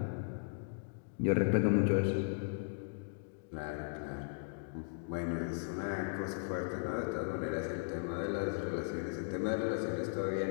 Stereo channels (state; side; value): silent; right; digital silence